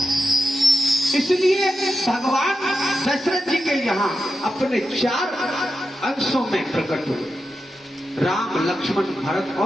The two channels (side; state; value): both; normal; correlation 0.89